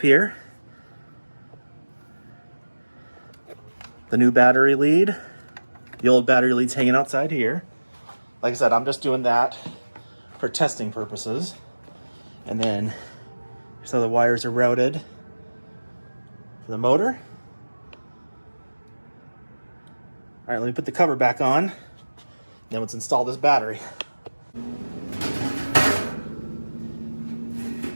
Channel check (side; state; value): both; inverted; correlation -1.00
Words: here. The new battery lead. The old battery lead's hanging outside here. Like I said, I'm just doing that for testing purposes. And then, so the wires are routed for the motor. All right, let me put the cover back on. Then let's install this battery.